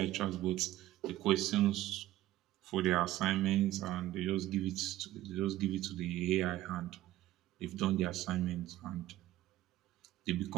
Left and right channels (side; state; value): left; quieter; 14.9 dB